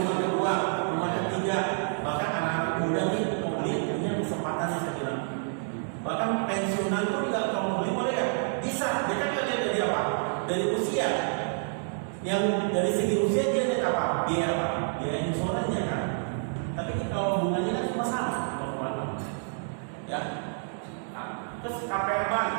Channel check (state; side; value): silent; left; digital silence